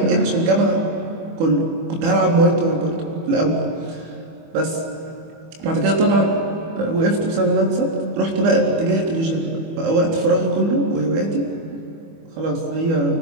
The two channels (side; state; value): left; late; 25 ms